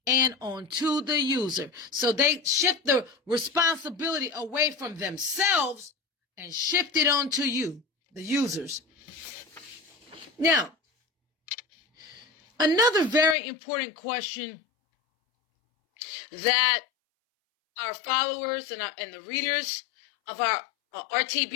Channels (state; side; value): drops out; right; at 13.4 s